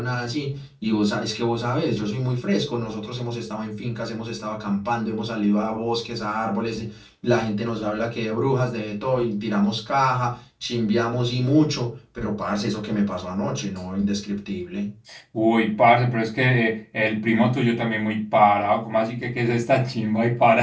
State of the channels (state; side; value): identical; both; correlation 1.00